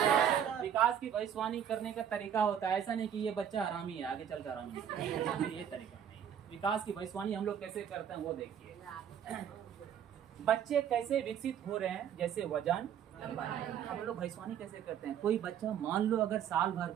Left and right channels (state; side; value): quieter; left; 9.1 dB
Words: विकास की भविष्यवाणी करने का तरीका होता है, ऐसा नहीं कि ये बच्चा हरामी है आगे चलकर हरामी है, ये तरीका नहीं। विकास की भविष्यवाणी हम लोग कैसे करते हैं वो देखिए। बच्चे कैसे विकसित हो रहे हैं, जैसे वजन, हम लोग भविष्यवाणी कैसे करते हैं। कोई बच्चा मान लो अगर साल भर